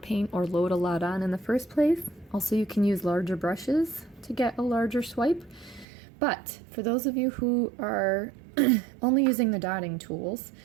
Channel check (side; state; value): left; drops out; at 5.9 s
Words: or load a lot on in the first place. Also, you can use larger brushes to get a larger swipe. But for those of you who are only using the dotting tools,